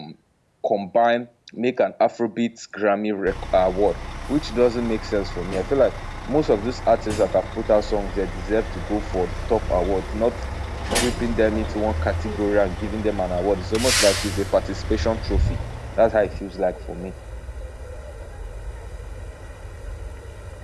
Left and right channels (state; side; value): identical; both; correlation 1.00